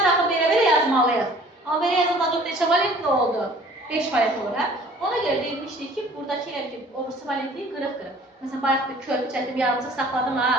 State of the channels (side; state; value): both; normal; correlation 0.51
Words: axı belə yazmalıyıq. Amma belə yazılan azot neçə valentli oldu? 5 valent olur, hə? Ona görə deyilmişdik ki, buradakı obrisi valentliyi qırıq-qırıq. Məsələn, bayaq bir körpü çəkdim, yarımcıq saxladım, ha?